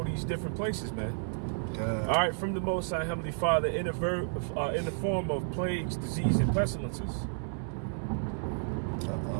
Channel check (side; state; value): left; silent; digital silence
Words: these different places, man. All right, from the Most High Heavenly Father in the form of plagues, disease, and pestilences.